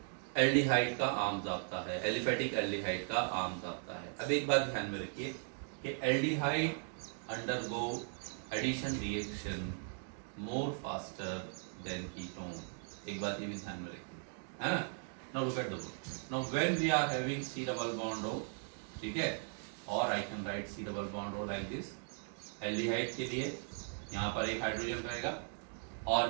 एल्डिहाइड का आम जाब्ता है, एलिफेटिक एल्डिहाइड का आम जाब्ता है। अब एक बात ध्यान में रखिए कि aldehyde undergo addition reaction more faster than ketone. एक बात ये भी ध्यान में रखिए, है ना। Now look at the board. Now when we are having C double bond O, ठीक है, और I can write C double bond O like this. Aldehyde के लिए यहाँ पर एक हाइड्रोजन रहेगा, और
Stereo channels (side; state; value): left; silent; 52 dB below the other